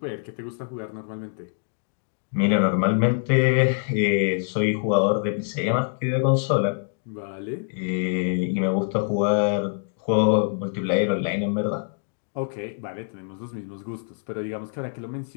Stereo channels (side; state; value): right; silent; 62 dB below the other